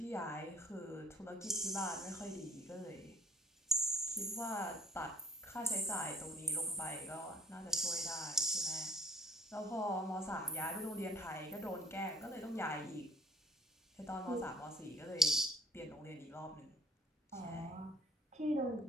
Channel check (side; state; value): both; normal; correlation 0.57